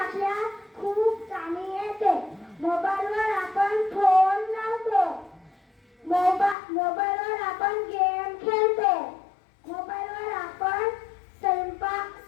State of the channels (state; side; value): drops out; right; at 6.6 s